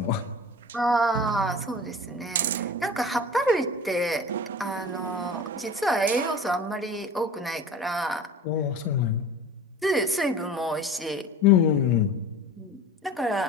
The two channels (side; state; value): both; normal; correlation 0.38